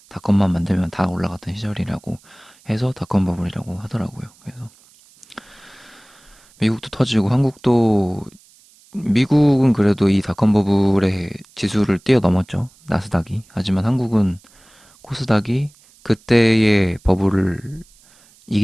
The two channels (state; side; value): noise; right; hiss, 29 dB below the sound